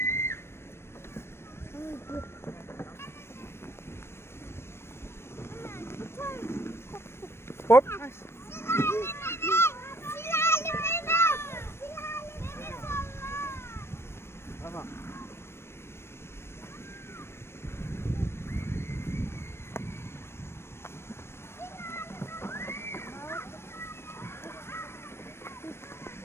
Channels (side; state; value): right; late; 0.12 ms